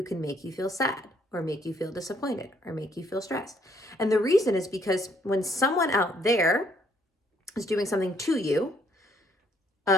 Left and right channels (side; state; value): both; normal; correlation 0.67